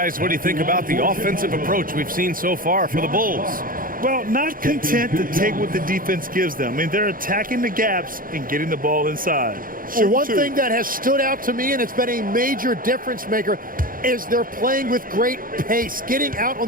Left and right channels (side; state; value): left; late; 0.41 ms